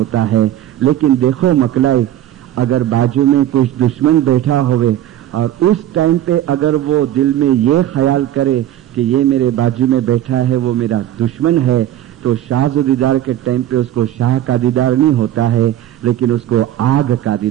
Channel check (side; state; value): left; quieter; 12.4 dB